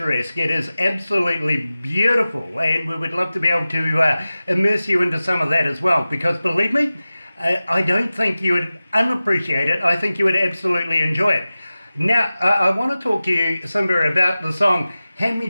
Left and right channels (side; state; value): both; inverted; correlation -0.96